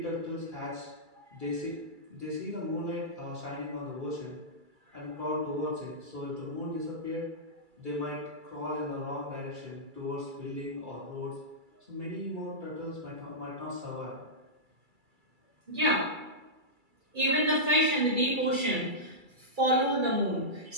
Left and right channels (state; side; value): late; left; 2.3 ms